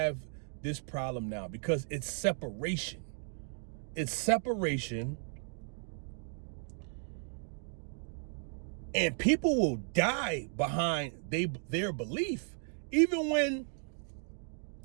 this problem now, because it's separation. It's separation. And people will die behind their belief. Even when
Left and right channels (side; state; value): left; silent; 54 dB below the other